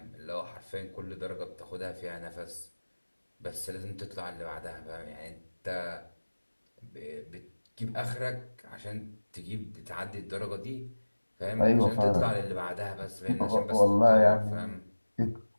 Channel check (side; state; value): both; inverted; correlation -1.00